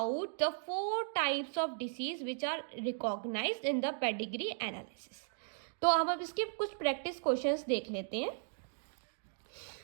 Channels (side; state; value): left; silent; digital silence